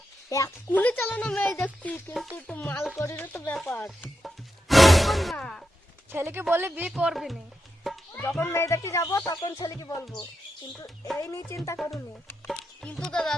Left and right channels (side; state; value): both; normal; correlation 0.86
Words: এক্ষুনি চালানো মেয়ে দেখছি, কিন্তু একটু মাল করিরও তো ব্যাপার। এখন না, ছেলেকে বলে বিয়ে করবি নি, যখন মেয়ে দেখতে যাবো তখন ছেলেকে বলবো, কিন্তু এই নিয়ে চিন্তা করুনি। কিন্তু দাদা